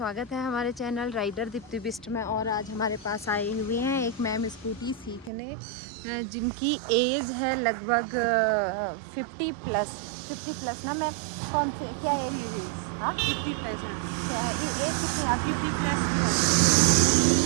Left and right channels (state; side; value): drops out; left; at 5.3 s